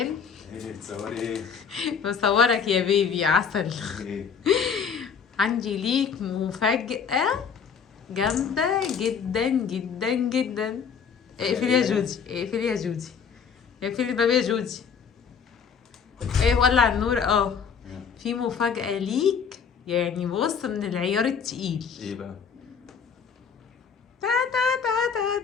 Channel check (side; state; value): right; quieter; 6.6 dB